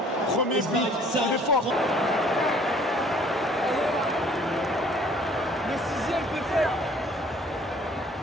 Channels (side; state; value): both; normal; correlation 0.56